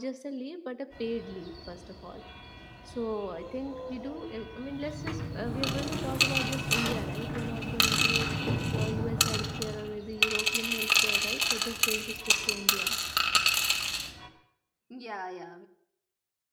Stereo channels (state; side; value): identical; both; correlation 1.00